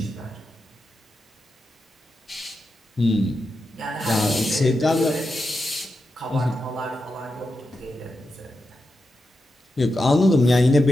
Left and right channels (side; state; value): both; normal; correlation 0.88